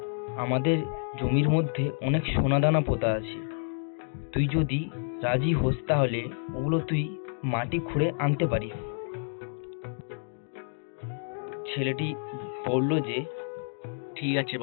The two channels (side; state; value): right; silent; digital silence